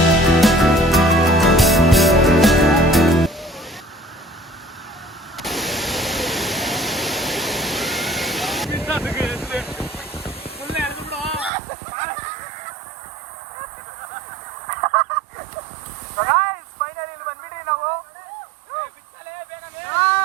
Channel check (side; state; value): left; drops out; at 11.5 s